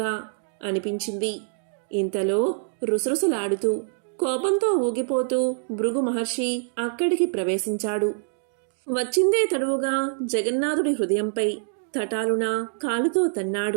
అనిపించింది. ఇంతలో రుసరుసలాడుతూ కోపంతో ఊగిపోతూ భృగు మహర్షి అక్కడికి ప్రవేశించాడు. వచ్చిందే తడువుగా జగన్నాథుడి హృదయంపై తటాలున కాలుతో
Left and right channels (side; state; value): left; silent; 62 dB below the other